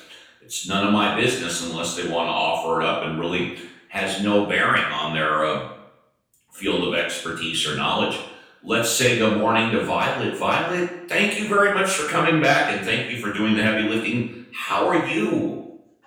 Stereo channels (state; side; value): identical; both; correlation 1.00